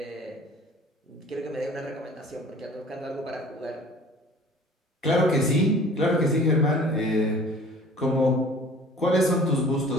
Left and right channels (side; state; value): both; normal; correlation 0.48